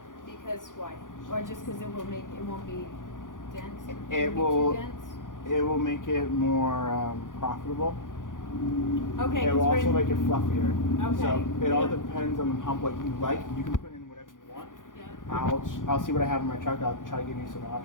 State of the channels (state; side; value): late; right; 0.88 ms